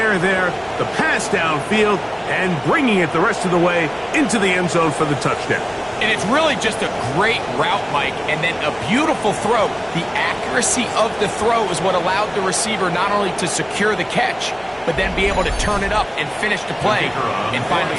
there. The pass downfield and bringing it the rest of the way into the end zone for the touchdown. And it's really just a great route, Mike, and then a beautiful throw. The accuracy of the throw is what allowed the receiver not only to secure the catch, but then be able to turn it up and finish the play and find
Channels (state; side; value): identical; both; correlation 1.00